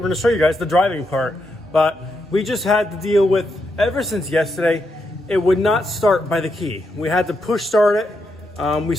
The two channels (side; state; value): both; normal; correlation 0.82